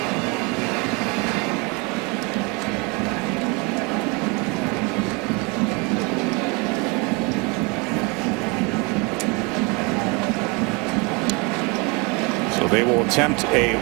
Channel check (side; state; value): left; quieter; 29.5 dB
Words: They will attempt a